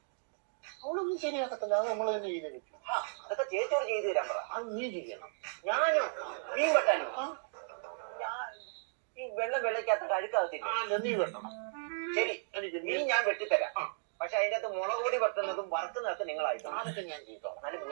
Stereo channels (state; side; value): silent; left; digital silence